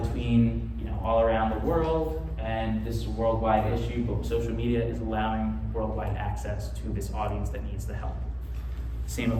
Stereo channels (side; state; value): both; identical; correlation 1.00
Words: between all around the world, and this is a worldwide issue, but social media is allowing worldwide access to this audience that needs the help. Same